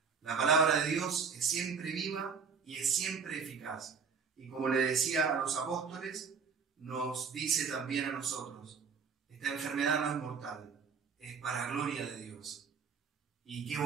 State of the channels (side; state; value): left; quieter; 5.8 dB